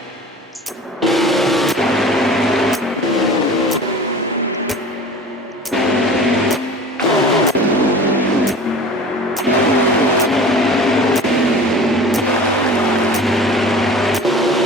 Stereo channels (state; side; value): normal; both; correlation 0.40